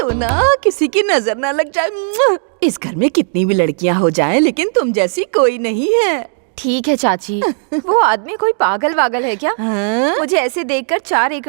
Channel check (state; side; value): silent; left; 70 dB below the other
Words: किसी की नजर ना लग जाए। इस घर में कितनी भी लड़कियां हो जाएं, लेकिन तुम जैसी कोई नहीं है। ठीक है चाची, वो आदमी कोई पागल वागल है क्या? हाँ? मुझे ऐसे देखकर 4